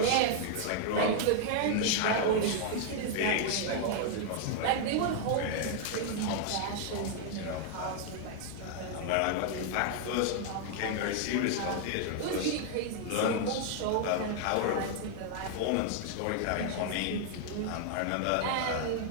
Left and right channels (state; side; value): different; both; correlation 0.00